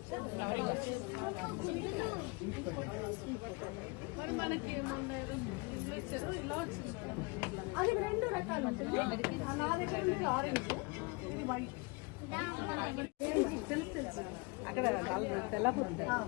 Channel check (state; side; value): quieter; right; 29.3 dB